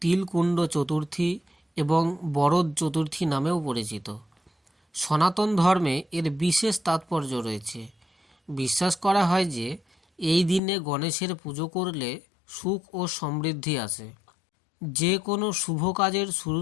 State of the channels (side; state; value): right; drops out; at 10.6 s